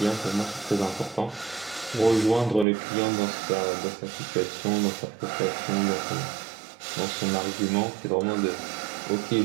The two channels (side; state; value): left; drops out; at 2.7 s